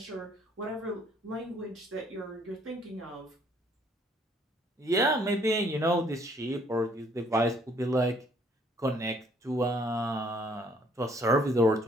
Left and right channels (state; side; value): normal; both; correlation 0.63